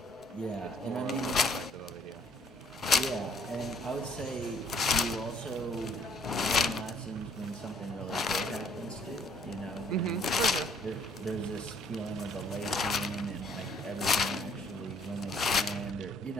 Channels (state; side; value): normal; both; correlation 0.61